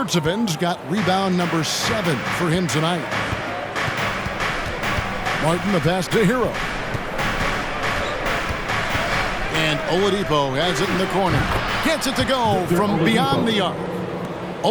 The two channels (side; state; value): both; identical; correlation 1.00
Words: got rebound number 7 for him tonight. Martin the pass to Hero. And Oladipo has it in the corner. Gets it to go from beyond the arc.